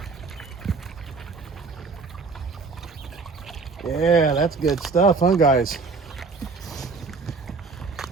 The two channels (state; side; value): quieter; left; 4.4 dB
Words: Yeah, that's good stuff, huh, guys?